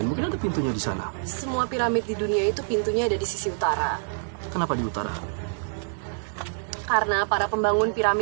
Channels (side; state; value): left; silent; 61 dB below the other